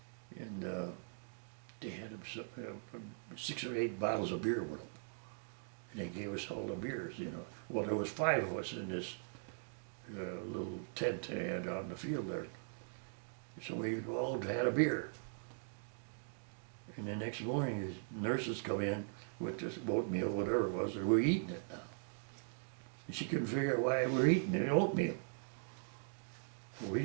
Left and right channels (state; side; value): silent; left; digital silence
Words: and they had 6 or 8 bottles of beer with them. And they gave us all the beers, you know. Well, there was 5 of us in this little tent they had out in the field there. So we all had a beer. And the next morning, the nurses come in with this oatmeal, whatever it was, and we're eating it now. And she couldn't figure out why we're eating the oatmeal. Well, we